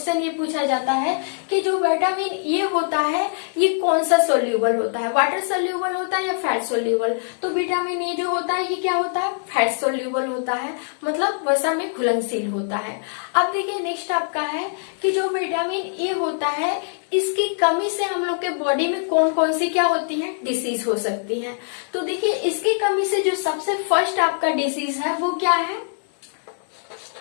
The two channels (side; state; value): right; silent; 64 dB below the other